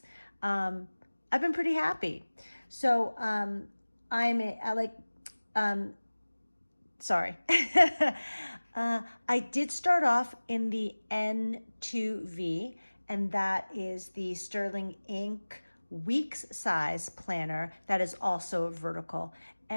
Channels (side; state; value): both; inverted; correlation -1.00